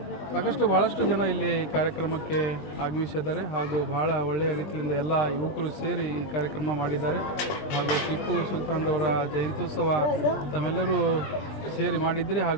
ಭಾಳಷ್ಟು ಜನ ಇಲ್ಲಿ ಕಾರ್ಯಕ್ರಮಕ್ಕೆ ಆಗಮಿಸಿದ್ದಾರೆ ಹಾಗೂ ಬಹಳ ಒಳ್ಳೆಯ ರೀತಿಯಿಂದ ಎಲ್ಲ ಯುವಕರು ಸೇರಿ ಈ ಕಾರ್ಯಕ್ರಮ ಮಾಡಿದ್ದಾರೆ। ಹಾಗೂ ಟಿಪ್ಪು ಸುಲ್ತಾನ್ರವರ ಜಯಂತ್ಯೋತ್ಸವ ತಮ್ಮೆಲ್ಲರೂ ಸೇರಿ ಮಾಡಿದ್ರಿ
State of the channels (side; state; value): right; late; 20 ms